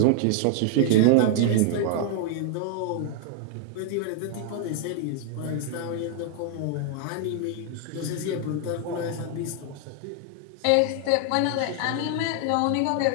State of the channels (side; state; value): both; different; correlation 0.00